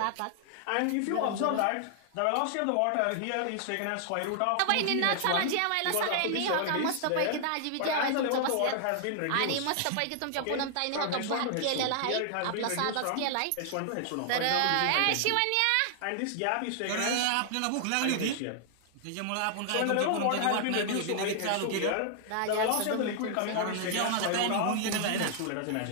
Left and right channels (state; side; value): different; both; correlation 0.00